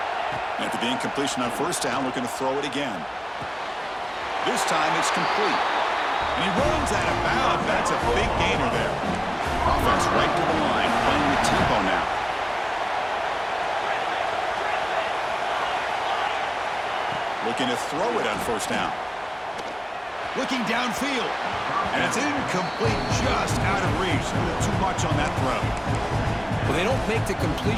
After the incompletion on 1st down, looking to throw it again. This time it's complete. And he runs out of bounds. That's a big gainer there. Offense right to the line, playing with tempo now. Looking to throw it on 1st down. Looking downfield. And it's incomplete, just out of reach. A little too much on that throw. Well, they don't make the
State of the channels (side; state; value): both; identical; correlation 1.00